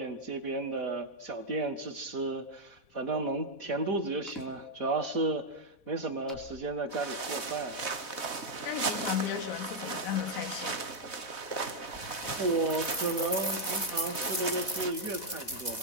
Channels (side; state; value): right; late; 4.0 ms